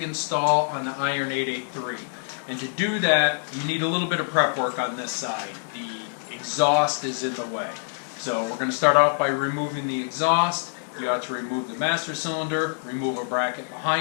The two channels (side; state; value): right; silent; digital silence